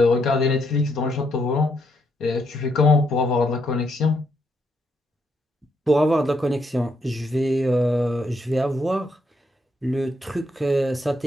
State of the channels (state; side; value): normal; both; correlation 0.76